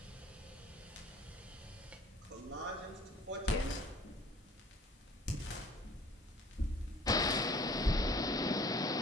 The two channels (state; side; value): normal; both; correlation 0.51